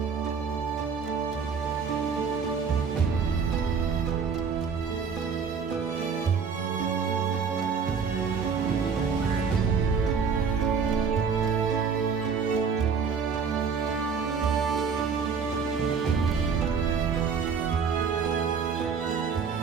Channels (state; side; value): quieter; left; 5.9 dB